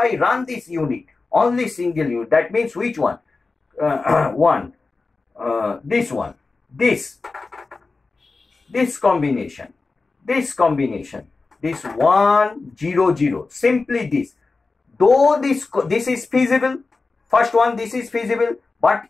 run this unit, only single unit, that means which one? This one. This combination, this 1 0 0, simply this. Though this is feasible, first one, this is feasible, but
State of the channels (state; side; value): quieter; right; 3.9 dB